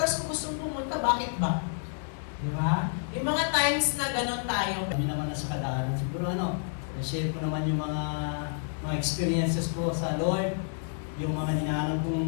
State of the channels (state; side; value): silent; right; digital silence